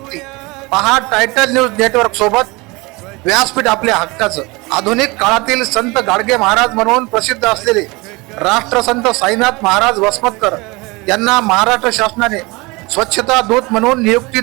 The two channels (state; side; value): quieter; left; 24.8 dB